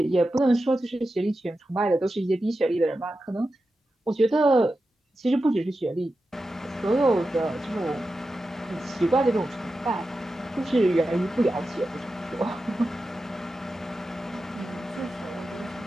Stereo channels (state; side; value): normal; both; correlation 0.91